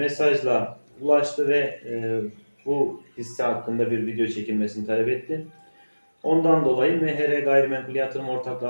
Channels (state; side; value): inverted; both; correlation -1.00